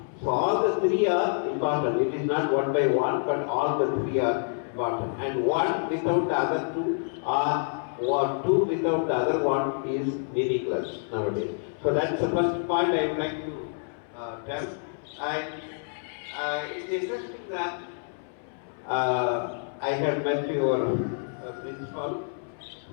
So all the three are important. It is not one by one, but all the three are important. And one without the other two are, or two without the other one is meaningless nowadays. So that's the first point I would like to tell. And it's interesting that I had met your principal,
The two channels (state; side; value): silent; right; 60 dB below the other